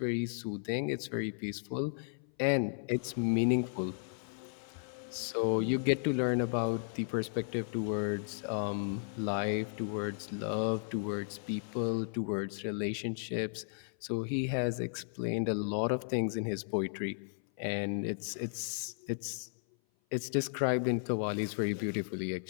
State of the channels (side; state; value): right; silent; 55 dB below the other